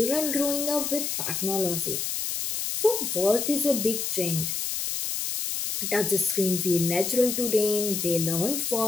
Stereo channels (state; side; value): noise; left; hiss, 2 dB below the sound